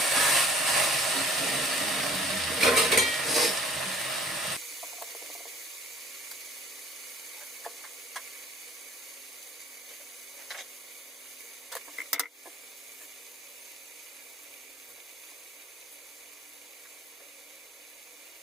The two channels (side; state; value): both; normal; correlation 0.54